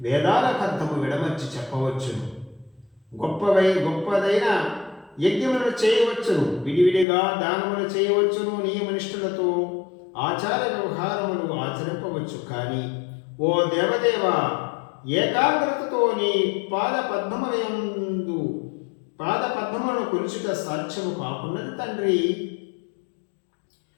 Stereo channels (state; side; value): drops out; right; at 7.1 s